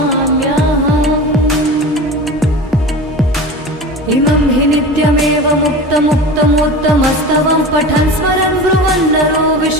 इमं हि नित्यमेव मुक्तमुक्तमोत्तमस्तवं पठन् स्मरन् ब्रुवन् नरो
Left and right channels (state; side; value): normal; both; correlation 0.32